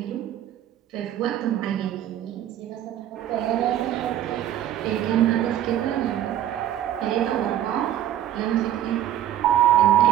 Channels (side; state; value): left; quieter; 11.6 dB